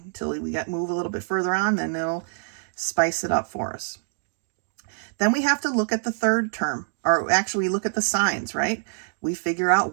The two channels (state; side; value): silent; left; digital silence